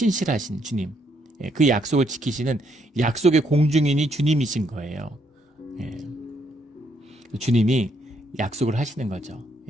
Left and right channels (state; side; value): normal; both; correlation 0.73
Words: 주님, 그 약속을 지키시는 약속의 공중인이 주님이신 거예요. 주님이 약속을 하시는 거죠.